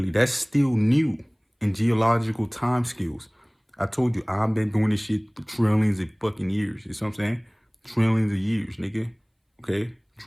that's still new in geological time skills. I told you, I've been doing this shit for trillions of fucking years. You see what I'm saying? Trillions of years, nigga. Okay?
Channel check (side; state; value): both; identical; correlation 1.00